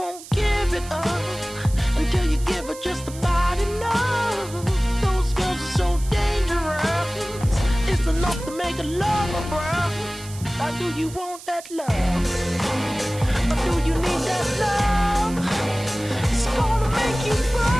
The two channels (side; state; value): right; noise; hiss, 16 dB below the sound